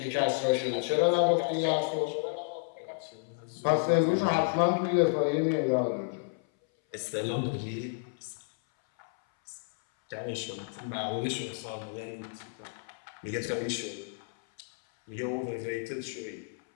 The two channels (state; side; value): silent; right; 57 dB below the other